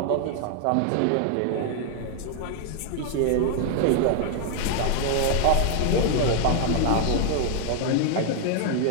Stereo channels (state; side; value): different; both; correlation 0.00